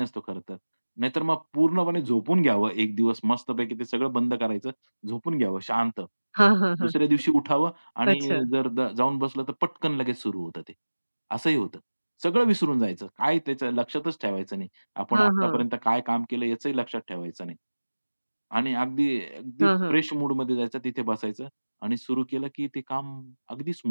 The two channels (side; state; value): both; inverted; correlation -1.00